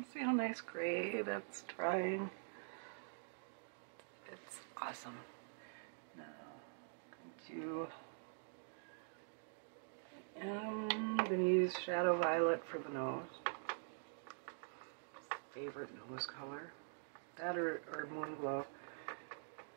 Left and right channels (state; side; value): silent; left; digital silence